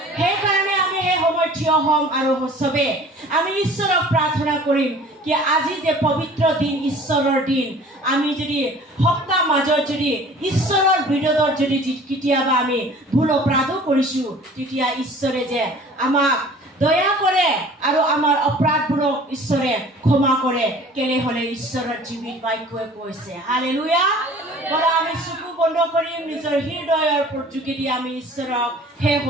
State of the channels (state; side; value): normal; both; correlation 0.47